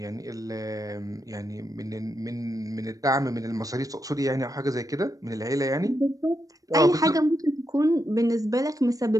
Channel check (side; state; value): left; late; 0.17 ms